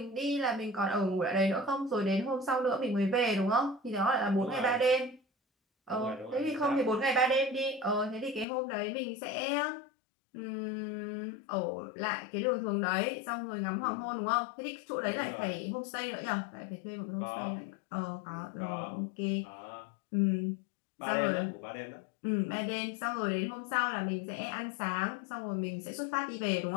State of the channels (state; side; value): drops out; right; at 8.5 s